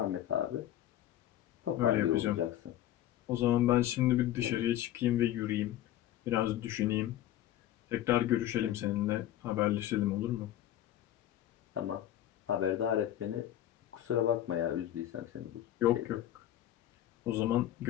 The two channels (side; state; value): right; quieter; 12.6 dB